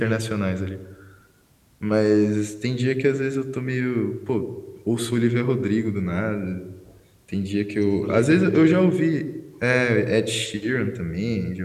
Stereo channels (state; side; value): identical; both; correlation 1.00